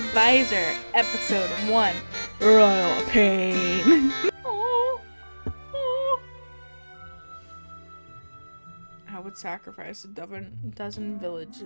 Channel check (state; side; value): inverted; both; correlation -1.00